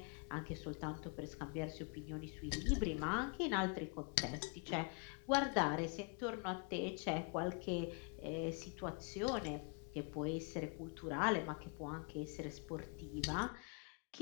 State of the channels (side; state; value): right; quieter; 35.3 dB